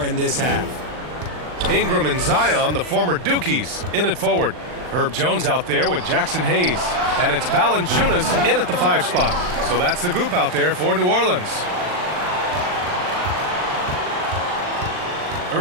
in this half. Ingram and Zion, the former Dukies, in it forward. Herb Jones out there with Jackson Hayes. And it's Valanciunas in at the 5 spot. So that's the group out there for New Orleans.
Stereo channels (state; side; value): late; left; 39 ms